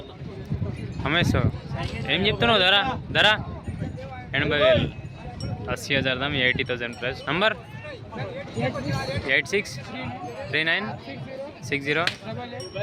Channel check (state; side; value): identical; both; correlation 1.00